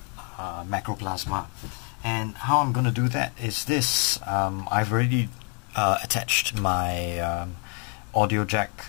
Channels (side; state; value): right; quieter; 38.2 dB